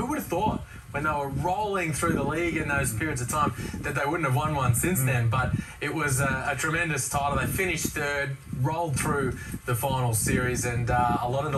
would have thought when they were rolling through the league in those periods of time that they wouldn't have won one since then? But it was a tremendous title. They finished third, rolled through the final series, and a lot of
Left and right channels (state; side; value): identical; both; correlation 1.00